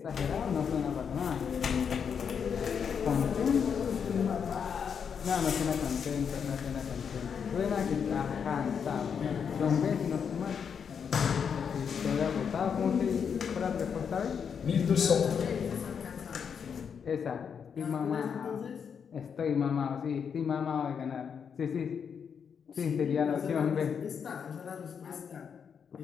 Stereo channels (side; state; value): right; quieter; 7.0 dB